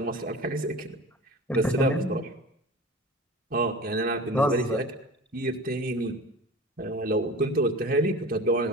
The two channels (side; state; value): both; normal; correlation 0.36